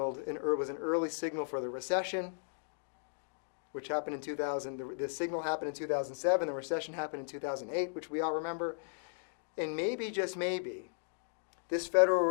an early signal for the recession, which happened in 2000. The signal happened in 2007. The recession happened in 2008, which we all remember. And maybe, just maybe, this Federal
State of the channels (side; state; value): right; silent; digital silence